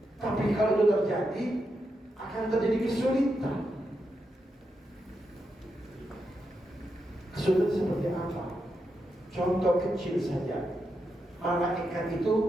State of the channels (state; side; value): normal; both; correlation 0.85